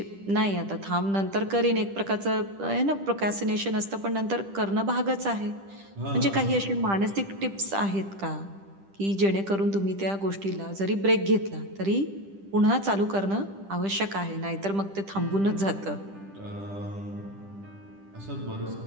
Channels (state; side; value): late; left; 10 ms